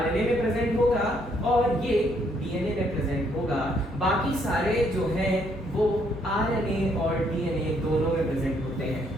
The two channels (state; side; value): normal; both; correlation 0.70